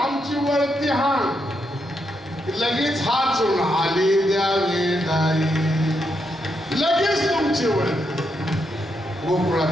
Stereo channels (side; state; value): both; normal; correlation 0.81